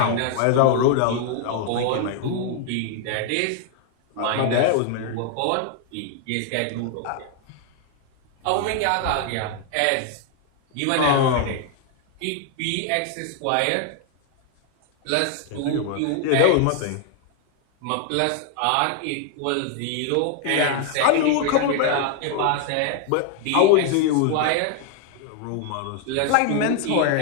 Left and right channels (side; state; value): both; different; correlation 0.00